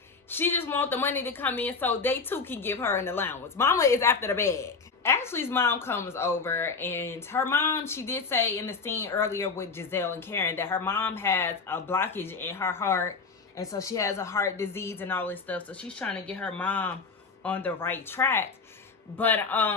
She just want the money to come in so they too can give her an allowance. Mama is after the bag. Ashley's mom comes over, and her mom, she did say in the scene earlier with Giselle and Karen that her mom has a blockage in her heart, and so she has a heart disease and all this stuff. So she's trying to get her mom on the right track. But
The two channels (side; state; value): right; quieter; 4.7 dB